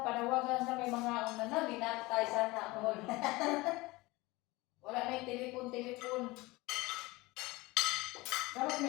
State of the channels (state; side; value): quieter; right; 21.7 dB